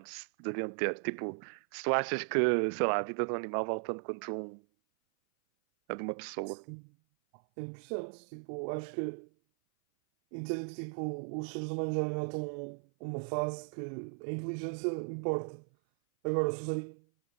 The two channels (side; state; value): left; silent; 54 dB below the other